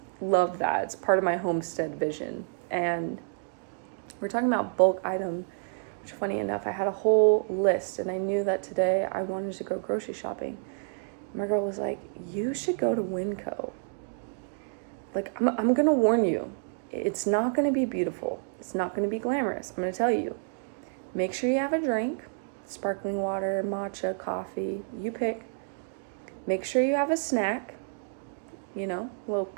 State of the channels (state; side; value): silent; left; digital silence